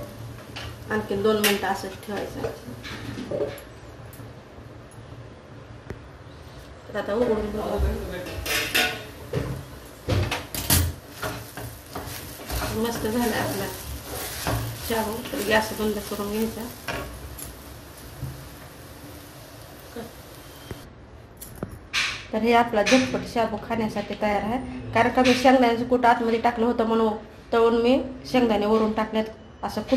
आणखीन 2 मिनिटं असंच ठेवायचं. तर आता उघडून बघू. मस्त झालं आपला शाबू. तर गॅस बंद करून घ्यायचा. तर हे आपला झटपट शाबू खाण्यासाठी तयार आहे. कारण का मी शेंगदाण्याचं कूट आतमध्ये टाकलं होतं म्हणून तळून मी शेंगदाणे वरून टाकल्यात, असं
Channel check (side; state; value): both; identical; correlation 1.00